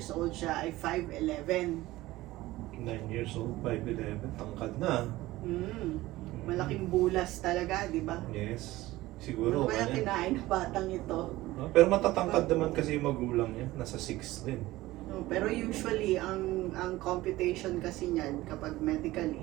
old siya ay 5'11". 9 years old, 5'11", tangkad na. Malaking bulas talaga, di ba? Yes, Ano siguro. kaya ganyan. kinain ng batang ito? No? Pero matatangkad naman kasi yung magulang niya, nasa 6 din. No, pero usually, ang computation kasi niyan, kapag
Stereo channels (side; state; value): left; quieter; 17.7 dB